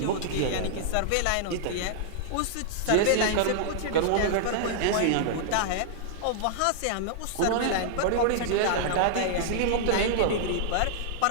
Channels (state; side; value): different; both; correlation -0.01